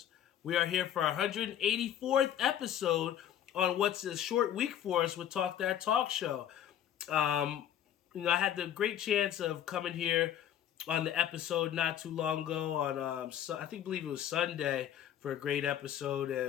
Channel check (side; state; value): right; quieter; 10.5 dB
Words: We are here for our 184th episode on what's a short week for us with Talk That Talk Show. Um, I had the great chance of coming here on the episode not too long ago on believe it was Sunday for a great episode,